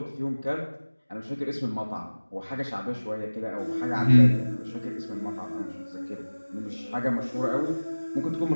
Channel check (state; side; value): inverted; both; correlation -1.00